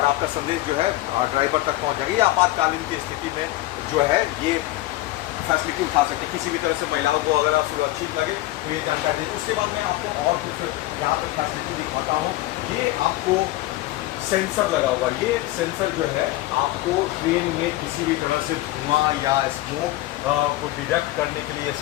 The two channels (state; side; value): quieter; right; 17.2 dB